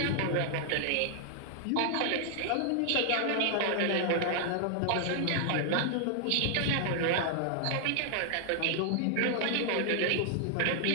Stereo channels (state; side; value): different; both; correlation 0.00